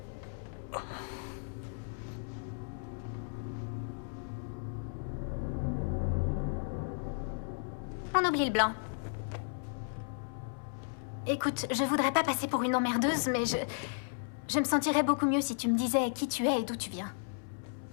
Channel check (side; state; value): right; silent; 55 dB below the other